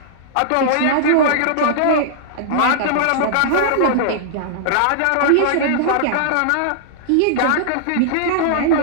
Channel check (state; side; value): different; both; correlation -0.01